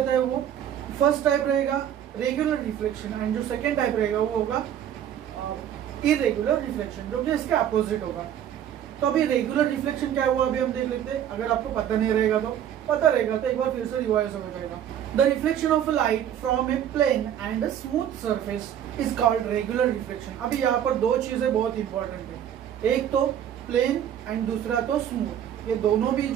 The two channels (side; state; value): left; quieter; 10.1 dB